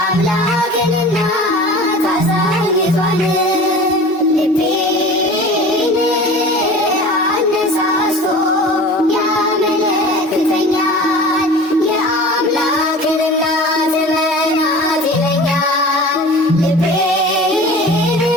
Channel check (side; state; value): both; normal; correlation 0.39